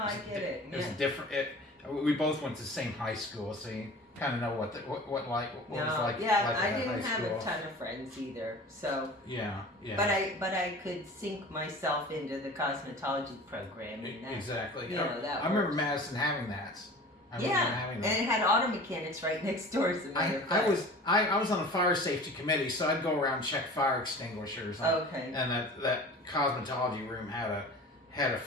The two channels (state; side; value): normal; both; correlation 0.40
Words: I get it. It was Yeah. different. We both went to the same high school, so you kind of know what it was like. Yeah, like I at didn't high have school. a ton of friends either. So, Yeah. but I could sink myself into the cosmetology program. And that, Exactly. You know, that I remember worked. Madison having that. I remember Yeah, having and that. it had auto mechanics right next door. As a matter of I fact. was on a fire safety committee, so I'd go around and check fire extinguishers. Okay. And that cosmetology room had a